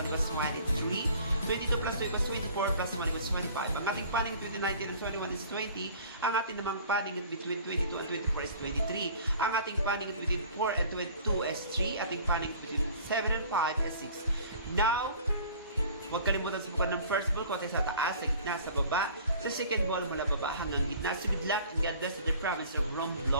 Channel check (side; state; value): both; inverted; correlation -0.48